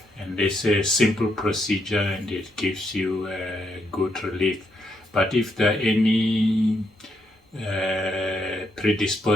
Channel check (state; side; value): normal; both; correlation 0.77